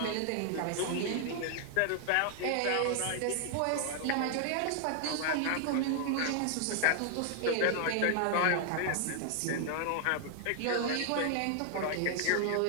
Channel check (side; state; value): both; different; correlation 0.00